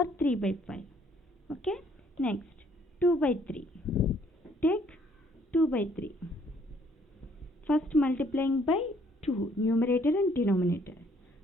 3 by 5. Okay, next 2 by 3. Take 2 by 3. First multiplying by 2, numerator and denominator.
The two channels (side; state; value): both; normal; correlation 0.64